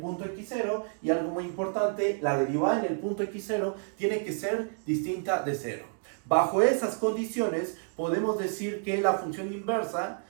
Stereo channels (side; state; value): left; silent; 58 dB below the other